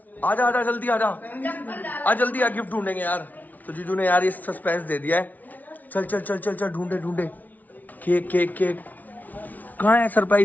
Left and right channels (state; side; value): late; right; 0.077 ms